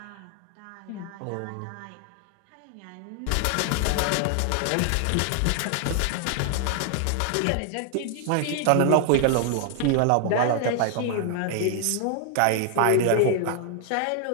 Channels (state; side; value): different; both; correlation 0.00